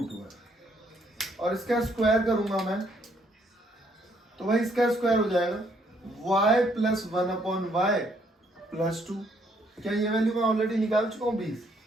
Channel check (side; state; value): both; normal; correlation 0.69